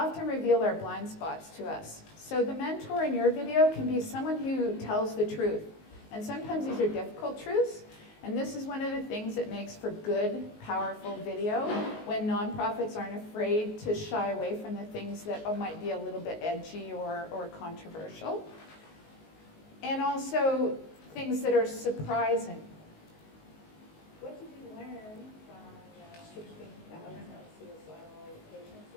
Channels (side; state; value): right; late; 19 ms